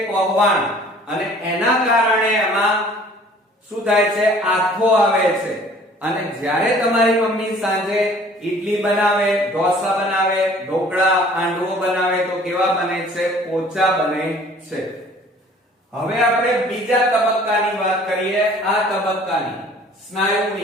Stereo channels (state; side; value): normal; both; correlation 0.52